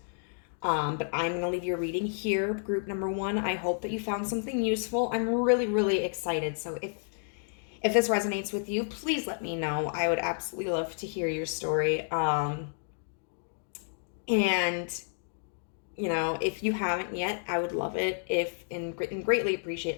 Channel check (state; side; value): silent; right; digital silence